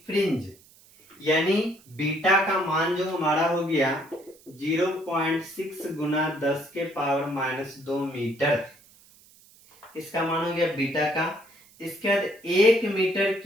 फ्रिंज, यानी बीटा का मान जो हमारा हो गया 0.6 गुना 10 के पावर माइनस 2 मीटर, इसका मान हो गया बीटा का। इसके बाद 1 मीटर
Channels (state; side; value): noise; right; hiss, 27 dB below the sound